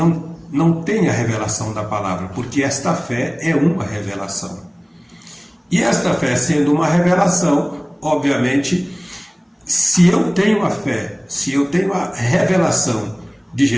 têm a revelação da palavra, porque esta fé é uma revelação. E esta fé sendo uma revelação, obviamente, se eu tenho a fé, se eu tenho a revelação de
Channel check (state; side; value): identical; both; correlation 1.00